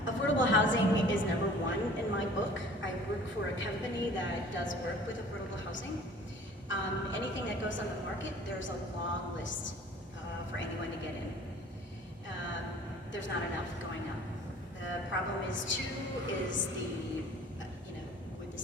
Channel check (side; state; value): both; normal; correlation 0.48